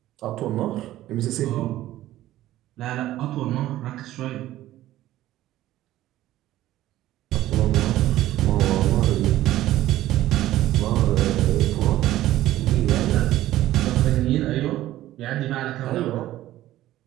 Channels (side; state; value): left; quieter; 14.6 dB